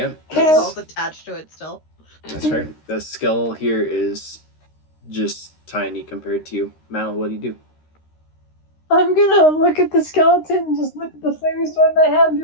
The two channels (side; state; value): right; late; 13 ms